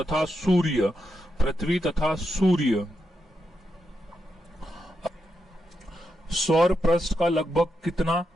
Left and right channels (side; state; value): both; normal; correlation 0.85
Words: सूर्य। पृथ्वी तथा सूर्य। सौर पृष्ठ का लगभग कितना